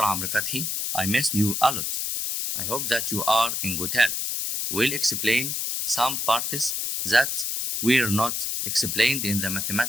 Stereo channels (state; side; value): noise; left; hiss, 1 dB below the sound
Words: Amr Fathi. I missed you a lot. I hope that you are in good health. We'll explain some parts that were not explained in the